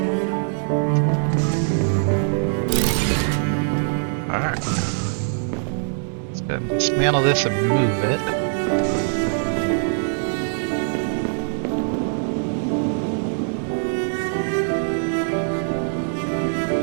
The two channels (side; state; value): left; silent; 63 dB below the other